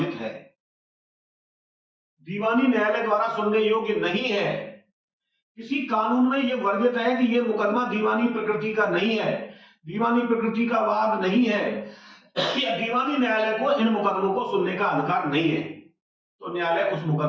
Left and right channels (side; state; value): both; identical; correlation 1.00